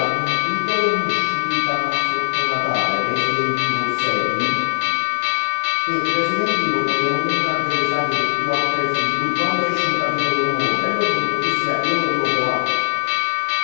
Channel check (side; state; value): right; silent; 61 dB below the other